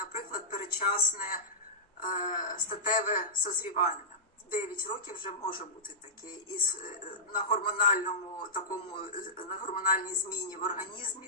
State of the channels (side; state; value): both; normal; correlation -0.14